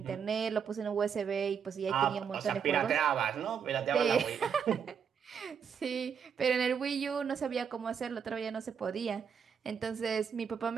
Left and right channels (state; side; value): quieter; left; 7.2 dB